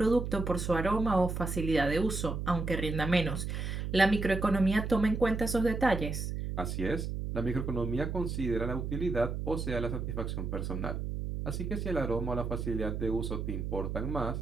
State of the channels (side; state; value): right; noise; hum, 3 dB below the sound